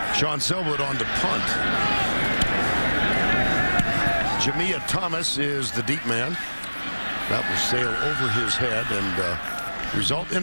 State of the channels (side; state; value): both; inverted; correlation -1.00